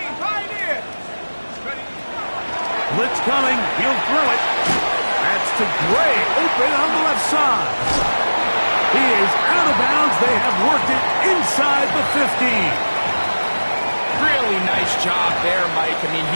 Pioneer. Ready? Blitz coming. He'll throw it. That's to Gray. Open on the left side. He is out of bounds. They have worked it inside the 15. Really nice job there, Mike. I mean,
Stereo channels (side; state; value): both; inverted; correlation -1.00